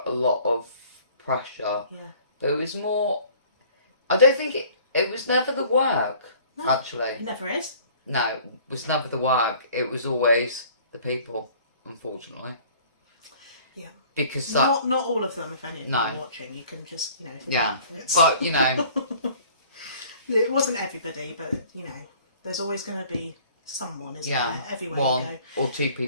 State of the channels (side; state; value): both; inverted; correlation -0.52